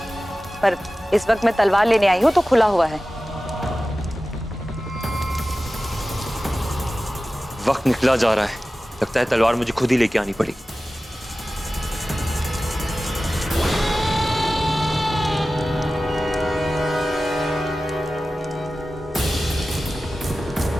पर इस वक्त मैं तलवार लेने आई हूं तो खुला हुआ है। वक्त निकला जा रहा है, लगता है तलवार मुझे खुद ही लेके आनी पड़ेगी।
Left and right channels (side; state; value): both; normal; correlation 0.95